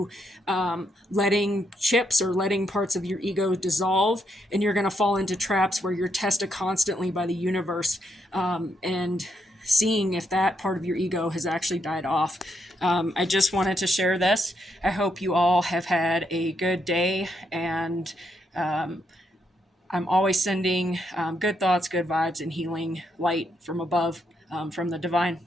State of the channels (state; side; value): normal; both; correlation 0.78